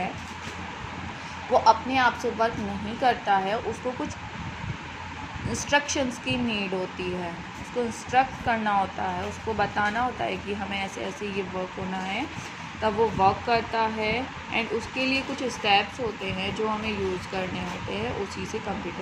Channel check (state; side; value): identical; both; correlation 1.00